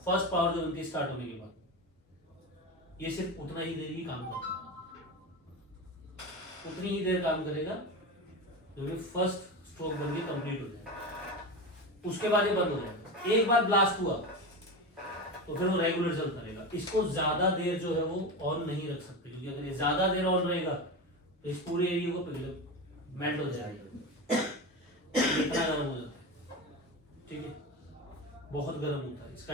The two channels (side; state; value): both; normal; correlation 0.22